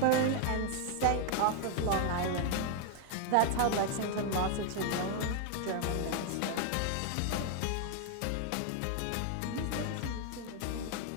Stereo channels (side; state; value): both; different; correlation 0.00